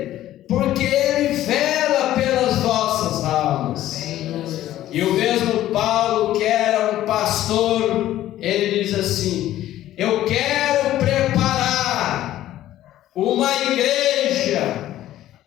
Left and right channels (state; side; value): quieter; right; 13.6 dB